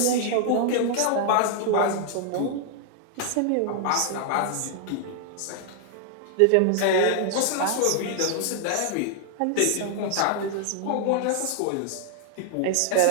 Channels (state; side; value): different; both; correlation 0.00